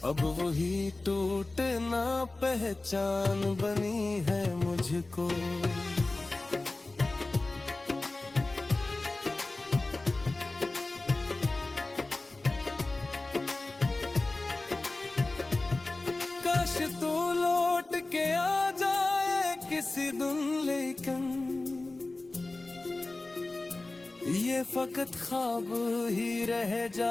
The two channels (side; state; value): right; quieter; 3.1 dB